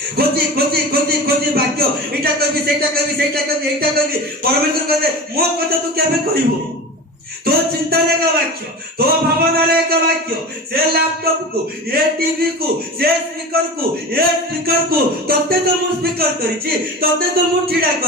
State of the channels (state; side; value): normal; both; correlation 0.30